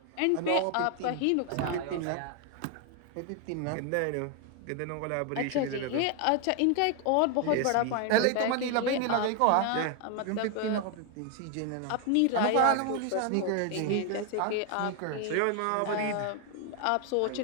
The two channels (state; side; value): different; both; correlation 0.01